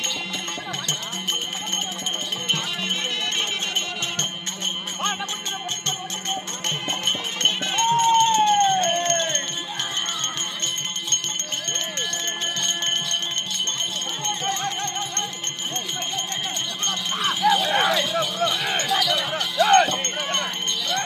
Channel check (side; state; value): both; identical; correlation 1.00